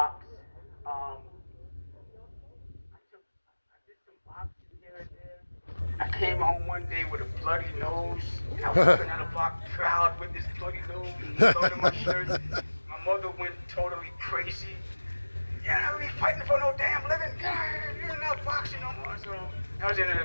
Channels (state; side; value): inverted; both; correlation -1.00